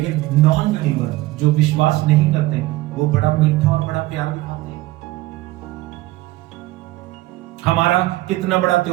नॉन बिलीवर जो विश्वास नहीं करते वो बड़ा मीठा और बड़ा प्यार दिखाते हैं। हमारा कितना बड़ा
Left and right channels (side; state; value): left; quieter; 18.3 dB